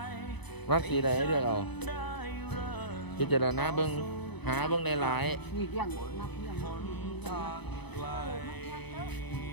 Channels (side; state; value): right; late; 0.99 ms